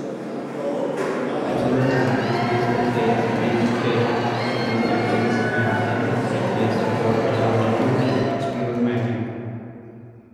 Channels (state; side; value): identical; both; correlation 1.00